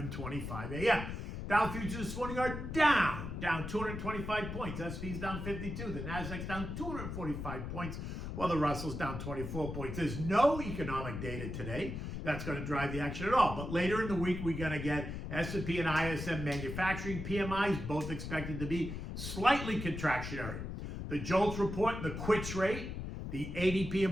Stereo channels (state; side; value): noise; left; rumble, 6 dB below the sound